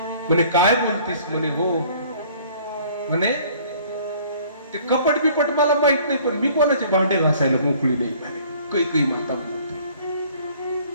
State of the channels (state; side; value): inverted; both; correlation -0.54